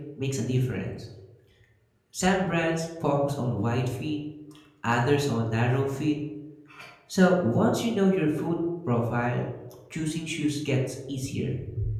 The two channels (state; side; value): identical; both; correlation 1.00